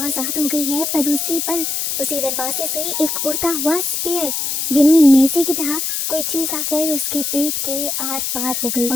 हो गई है, पर उसी पल उसी दरवाजे से एक उड़ता हुआ स्पेयर यानी नेज़ी की तरह कोई चीज आकर उसके पेट के आर पार हो गई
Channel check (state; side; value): noise; left; hiss, 1 dB below the sound